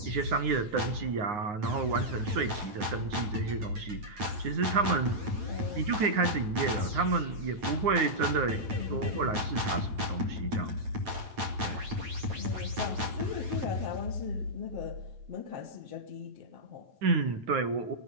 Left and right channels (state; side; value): late; left; 9.0 ms